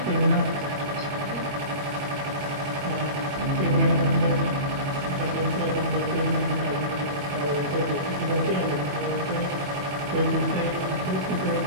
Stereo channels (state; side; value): late; left; 21 ms